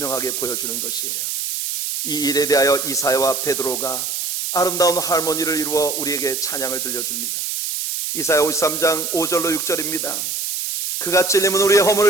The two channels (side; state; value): right; noise; hiss, 3 dB below the sound